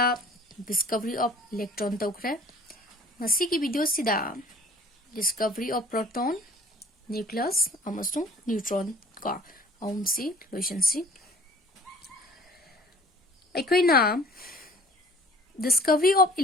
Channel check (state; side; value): normal; both; correlation 0.50